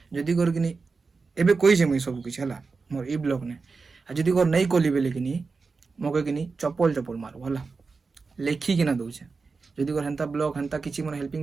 ଯଦି କରିକିନି ଏବେ କହିଛେ ମୁଇଁ ସବୁ କିଛି ହେଲା ମୋର ଇ ବ୍ଲଗ ନେ ଆଉ ଯଦି କର ନେଇ କଲି ବେଲେ କିନି ମକେ କିନି ଚପଲ ଚପଲ ମାରବ ହେଲା ଲେଖିକିନା ଦଉଛେ ଯଦି କର ହେନ୍ତା ବ୍ଲଗ ହେନ୍ତା କିଛି ମାନେ ହେଲ୍ପିଂ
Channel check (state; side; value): quieter; left; 4.4 dB